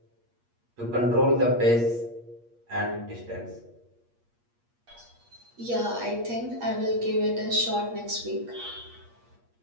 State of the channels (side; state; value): left; late; 8.4 ms